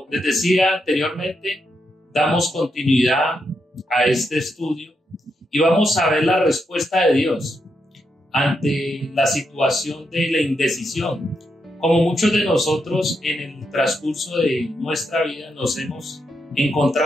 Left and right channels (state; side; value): normal; both; correlation 0.82